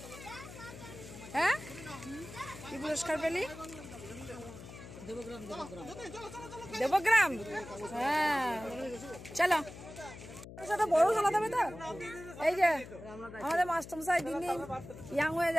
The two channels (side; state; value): left; noise; hum, 14 dB below the sound